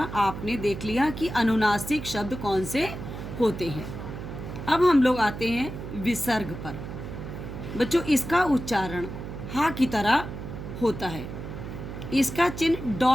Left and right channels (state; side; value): noise; right; hum, 8 dB below the sound